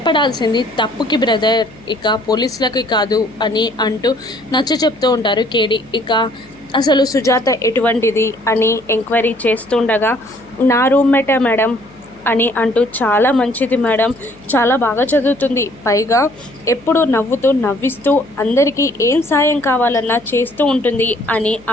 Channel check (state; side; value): noise; left; hum, 24 dB below the sound